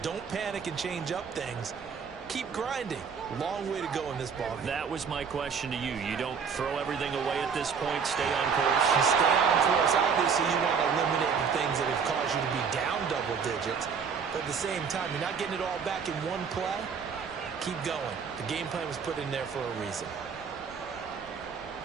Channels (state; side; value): quieter; left; 6.2 dB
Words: Don't panic and change up things. Keep grinding. Long way to go in this ball game. That was my question to you. You don't throw everything away at this point. Stay on course. You stay on course. Obviously, you want to eliminate the things that have caused you to be down double digits. But at the same time, you're not getting it all back in one play. Keep going. The game plan was put in there for a reason.